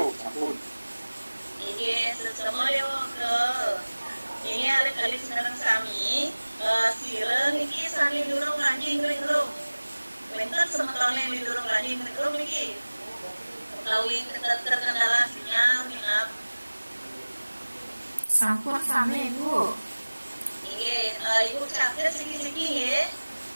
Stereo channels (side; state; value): both; inverted; correlation -1.00